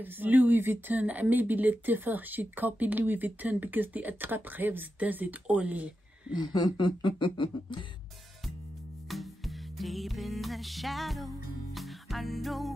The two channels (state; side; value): normal; both; correlation 0.89